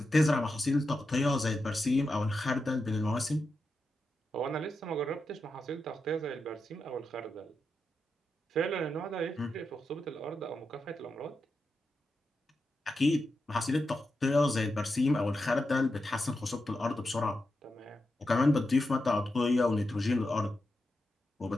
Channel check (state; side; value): normal; both; correlation 0.88